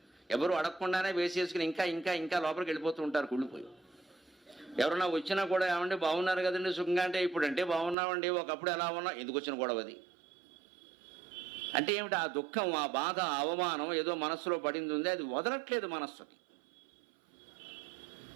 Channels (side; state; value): left; drops out; at 8.0 s